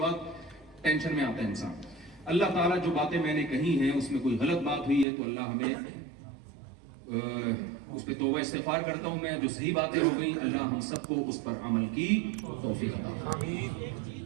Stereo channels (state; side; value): drops out; left; at 5.1 s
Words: ٹینشن میں آتا ہے انسان. اللہ تعالیٰ جو باتیں میں نے کہی ہیں اس میں کوئی غلط بات ہوئی ہے تو اللہ ہمیں اس پہ توبہ استغفار کرتا ہوں میں. جو صحیح باتیں ہو گئی اللہ ہم سب کو اس پر عمل کی توفیق عطا فرمائے.